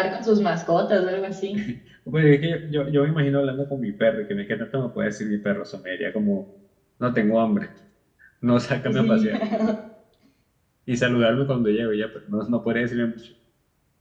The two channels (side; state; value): both; identical; correlation 1.00